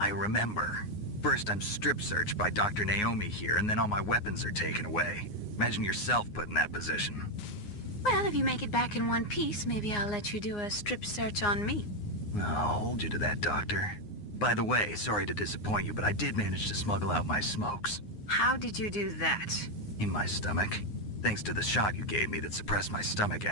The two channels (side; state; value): right; late; 9.6 ms